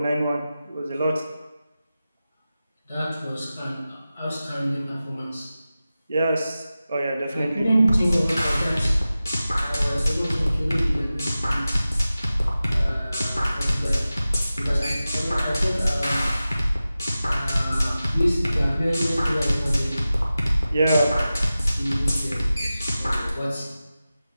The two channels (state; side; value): inverted; both; correlation -0.95